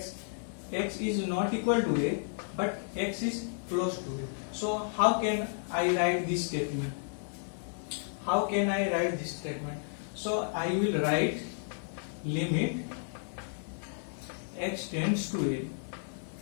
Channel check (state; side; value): silent; right; digital silence